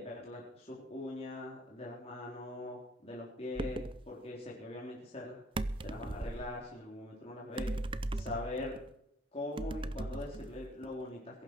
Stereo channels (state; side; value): normal; both; correlation 0.62